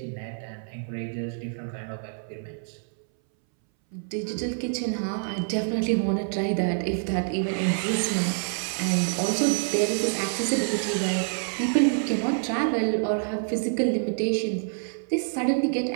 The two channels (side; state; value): left; silent; 60 dB below the other